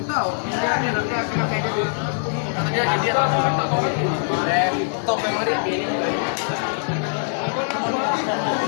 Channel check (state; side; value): silent; right; digital silence